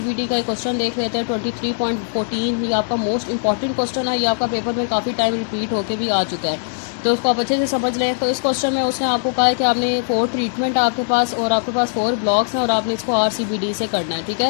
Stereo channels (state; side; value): silent; right; digital silence